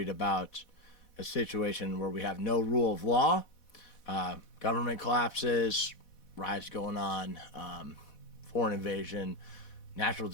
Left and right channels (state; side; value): late; right; 4.1 ms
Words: about a situation where we have no rule of law, government collapses, riots going on, foreign invasion, natural